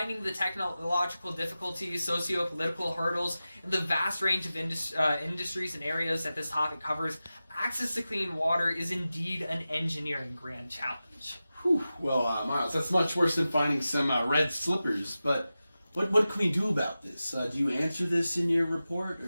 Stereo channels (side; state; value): both; inverted; correlation -0.94